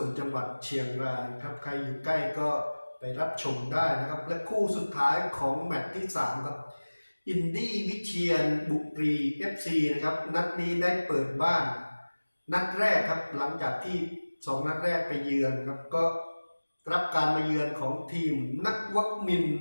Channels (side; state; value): both; inverted; correlation -1.00